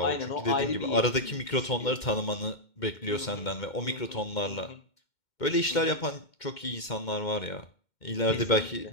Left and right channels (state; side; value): late; right; 2.1 ms